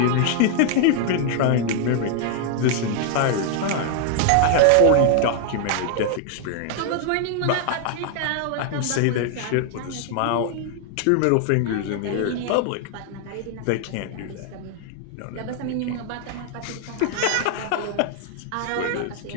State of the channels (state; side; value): different; both; correlation 0.00